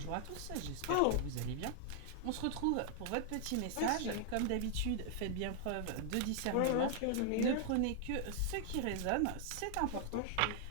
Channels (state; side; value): different; both; correlation 0.00